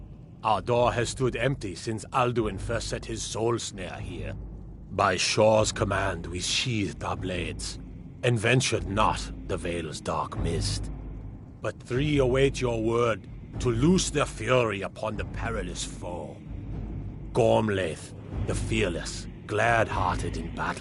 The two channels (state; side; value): identical; both; correlation 1.00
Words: Our door has stood empty since Alduin first set his soul snare here. By Shore's command, we sheathed our blades, and ventured not the Vale's dark mist. But three await your word to loose their fury upon the perilous foe. Gormlaith, the fearless, glad-hearted in